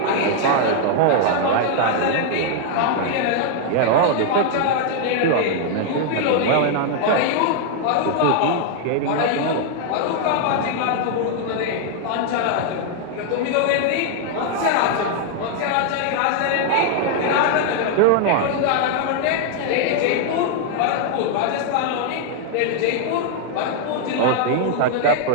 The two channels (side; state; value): both; different; correlation 0.00